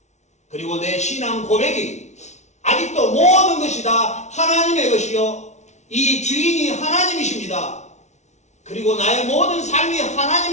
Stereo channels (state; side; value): late; right; 0.33 ms